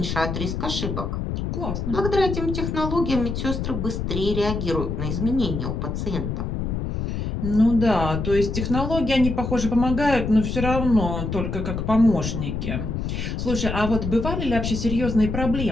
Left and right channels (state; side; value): noise; left; rumble, 3 dB below the sound